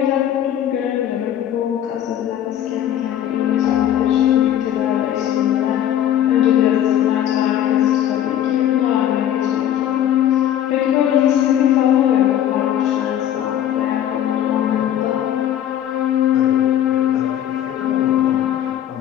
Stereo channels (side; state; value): right; quieter; 11.1 dB